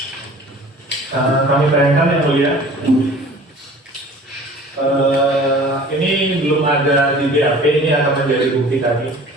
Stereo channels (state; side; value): normal; both; correlation 0.46